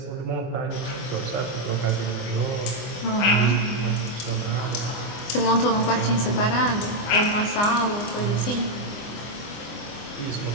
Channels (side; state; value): right; late; 24 ms